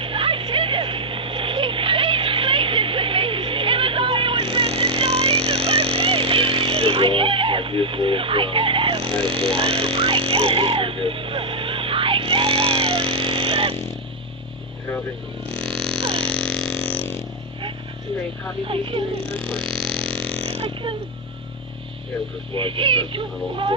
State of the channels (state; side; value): normal; both; correlation 0.00